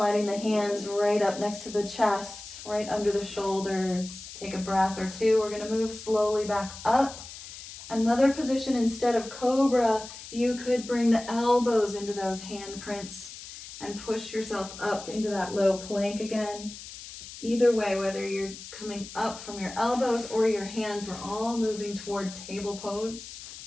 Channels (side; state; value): left; noise; hiss, 13 dB below the sound